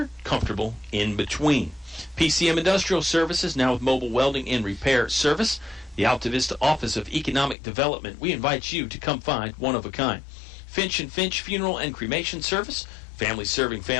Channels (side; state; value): right; drops out; at 7.6 s